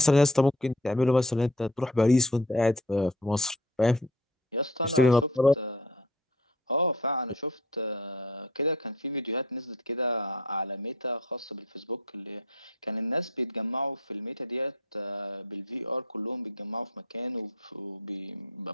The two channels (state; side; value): normal; both; correlation 0.45